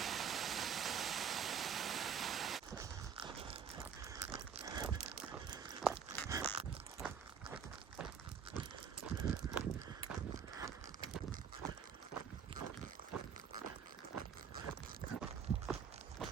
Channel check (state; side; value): quieter; left; 7.3 dB